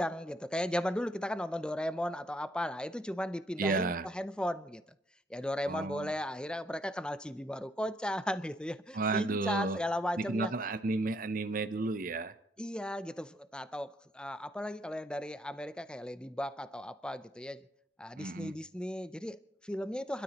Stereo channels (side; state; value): both; normal; correlation 0.72